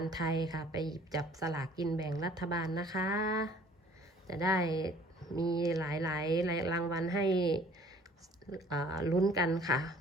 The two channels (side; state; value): both; normal; correlation 0.54